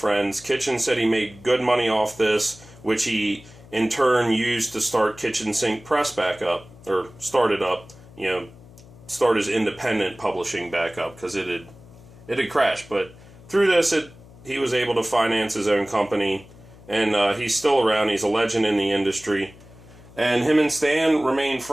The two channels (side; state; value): left; noise; hum, 22 dB below the sound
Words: Kitchen said he made good money off this, which he in turn used to start Kitchen Sink Press back up, or started up, start his independent publishing back up, because it had crashed. But through this, he was able to finance his own company, and he's still around. He's a legend in the industry. And him and Stan remain